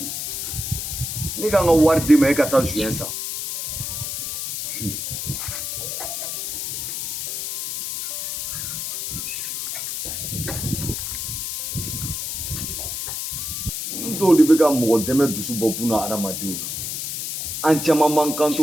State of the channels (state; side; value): noise; left; hiss, 4 dB below the sound